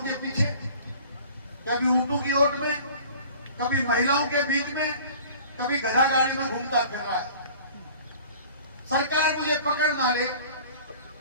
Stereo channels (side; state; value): both; inverted; correlation -0.46